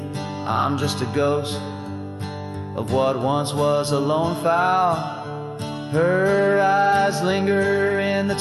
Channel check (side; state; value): both; identical; correlation 1.00